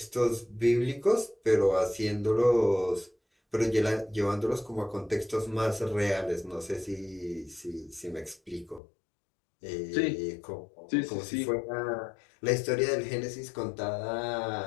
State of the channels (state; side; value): drops out; right; at 8.8 s